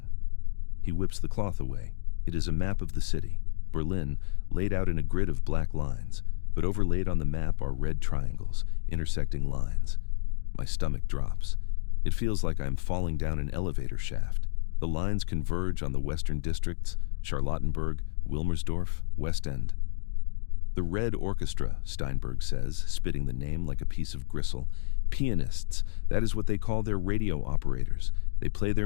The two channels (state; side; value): silent; right; digital silence